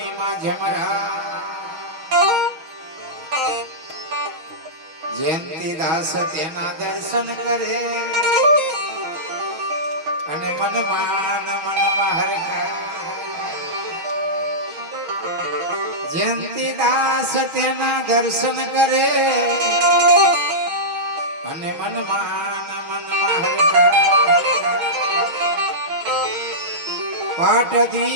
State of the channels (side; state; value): left; late; 6.2 ms